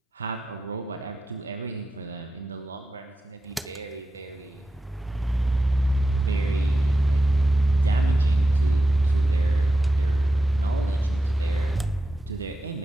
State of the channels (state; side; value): normal; both; correlation 0.91